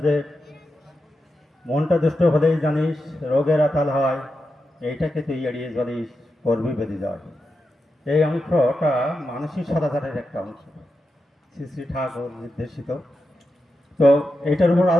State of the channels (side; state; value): both; normal; correlation 0.88